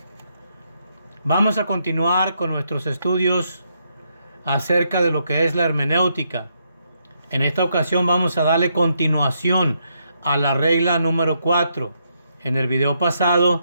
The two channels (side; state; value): both; inverted; correlation -0.77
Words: Vamos a continuar con nuestros estudios acerca de lo que es la hermenéutica. En esta ocasión vamos a darle continuación a la regla número 4. En el video